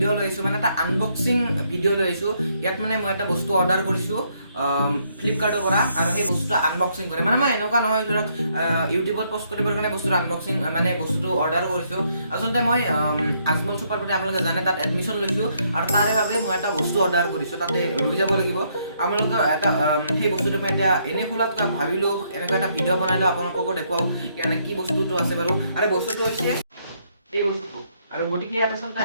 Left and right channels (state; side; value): inverted; both; correlation -0.72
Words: লৈছো মানে এটা আনবক্সিং ভিডিঅ' লৈছো। ইয়াত মানে মই এটা বস্তু অৰ্ডাৰ কৰিছো ফ্লিপকাৰ্টৰ পৰা আৰু সেই বস্তুটো আনবক্সিং কৰে। মানে মই এনেকুৱা নহয় ধৰক ইউটিউবত পোষ্ট কৰিবৰ কাৰণে বস্তুটো আনবক্সিং মানে বস্তুটো অৰ্ডাৰ কৰিছো। আচলতে মই আজমল চুপাৰ বুলি আপোনালোকে জানে তাত এডমিশ্যন লৈছো আৰু তাৰে বাবে মই এটা বস্তু অৰ্ডাৰ কৰিছো। তাতে লৈ যাব লাগিব। আপোনালোকে এটা সেই বস্তুটো মই এতিয়া এনে খোলাত ভাবিলো এনেকুৱা এটা ভিডিঅ' বনাইলো আপোনালোককো দেখুৱাও মানে কি বস্তুটো আছে বাৰু। আৰু বস্তুটো হৈছে এই বস্তুটো আৰু গতিকে ইয়াত আচলতে